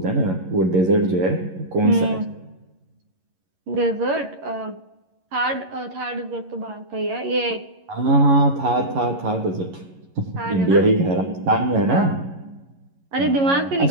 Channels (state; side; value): late; left; 11 ms